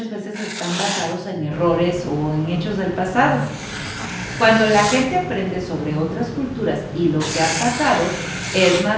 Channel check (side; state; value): both; identical; correlation 1.00